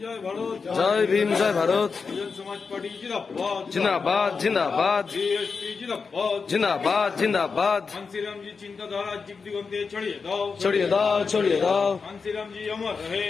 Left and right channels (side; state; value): right; quieter; 5.1 dB